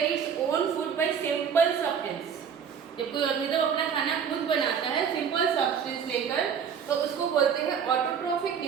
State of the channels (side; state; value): left; quieter; 7.3 dB